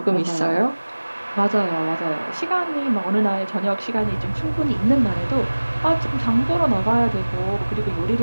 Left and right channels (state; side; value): inverted; both; correlation -1.00